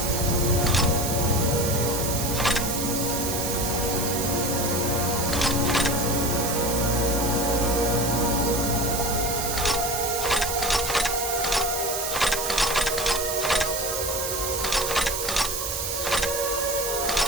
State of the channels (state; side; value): noise; right; hiss, 3 dB below the sound